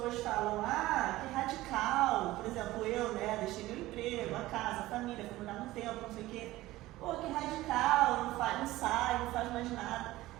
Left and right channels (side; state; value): left; quieter; 17.2 dB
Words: falam, que radical. Por exemplo, eu, né? Deixei meu emprego, a casa, a família, fui mudar no tempo, não sei o quê. Pô, que radical, não sai, não faz mais nada.